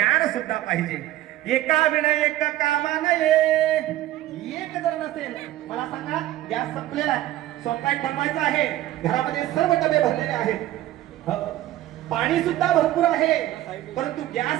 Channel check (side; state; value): left; quieter; 14.7 dB